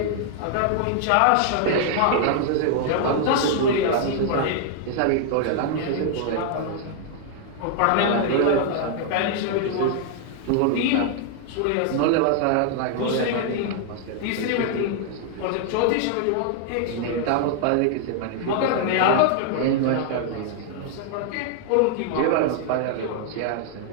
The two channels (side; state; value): both; different; correlation 0.00